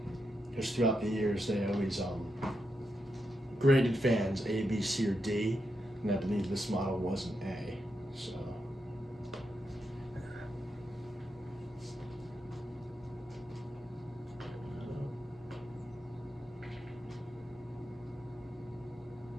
Because throughout the years, they always graded fans A, B, C, or D, and I believe this model was an A. So.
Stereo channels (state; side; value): normal; both; correlation 0.85